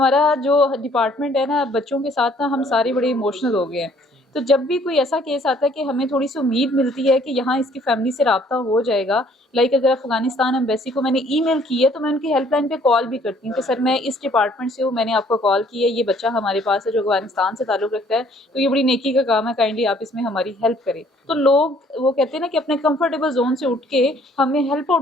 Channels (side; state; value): both; normal; correlation 0.60